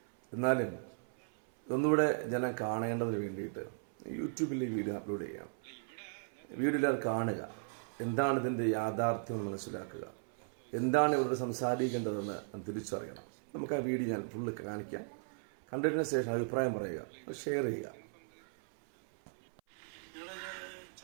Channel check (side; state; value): left; silent; 53 dB below the other